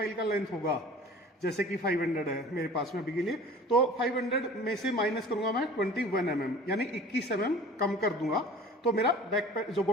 का लेंथ होगा, जैसे कि 500 है मेरे पास में अभी के लिए, तो 500 में से माइनस करूंगा मैं 21 mm, यानी 21 mm कम कर दूंगा। तो मेरा जो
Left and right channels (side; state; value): both; normal; correlation 0.44